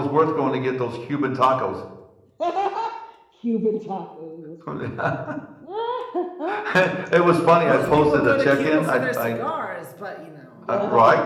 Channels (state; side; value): identical; both; correlation 1.00